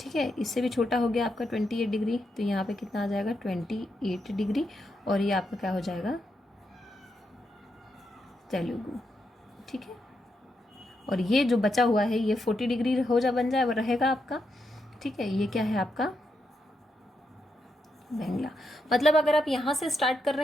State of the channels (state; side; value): normal; both; correlation 0.83